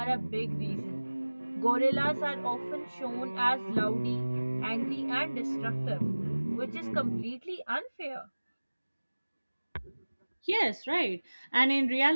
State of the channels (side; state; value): both; inverted; correlation -1.00